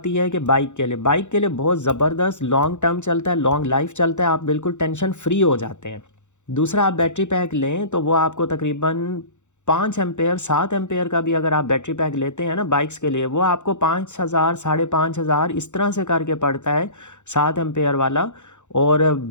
है कि बाइक के लिए बहुत ज़बरदस्त लॉन्ग टर्म चलता है, लॉन्ग लाइफ चलता है, आप बिल्कुल टेंशन फ्री हो जाते हैं। दूसरा, आप बैटरी पैक लें तो वो आपको तकरीबन 5 एम्पेयर 7 एम्पेयर का भी अगर आप बैटरी पैक लेते हैं ना बाइक्स के लिए, वो आपको 5,000 5,500 इस तरह से करके पड़ता है 7 एम्पेयर वाला। और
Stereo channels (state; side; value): late; right; 0.84 ms